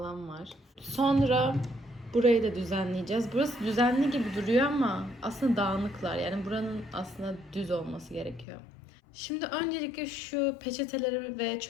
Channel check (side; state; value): right; drops out; at 8.5 s